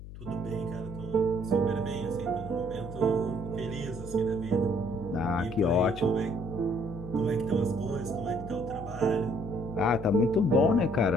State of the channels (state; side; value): noise; left; hum, 13 dB below the sound